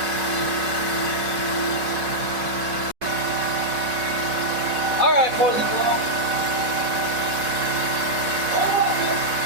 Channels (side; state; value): left; late; 5.4 ms